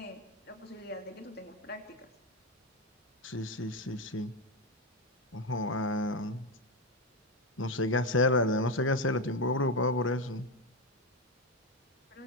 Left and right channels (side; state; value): both; normal; correlation 0.11